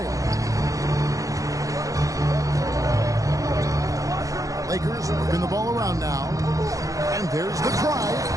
Lakers working the ball around now. And there's the drive.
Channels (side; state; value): left; late; 0.16 ms